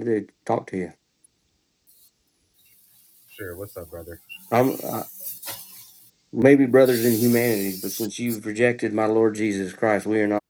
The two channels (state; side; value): identical; both; correlation 1.00